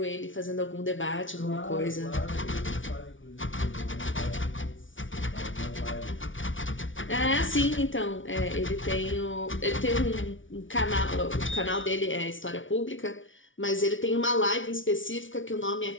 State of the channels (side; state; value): right; late; 0.56 ms